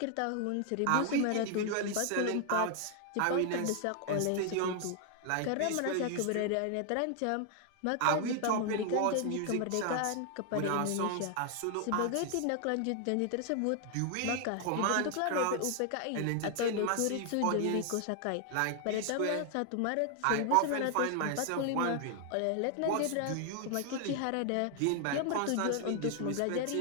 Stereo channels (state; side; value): different; both; correlation 0.00